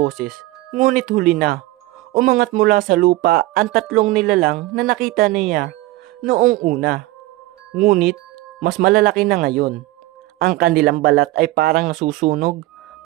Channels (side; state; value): left; quieter; 18.3 dB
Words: ngunit huli na. Umangat mula sa lupa ang 3 nilalang na nakita niya noong una. Ngunit, mas malalaki na ngayon. Ang kanilang balat ay parang nasusunog.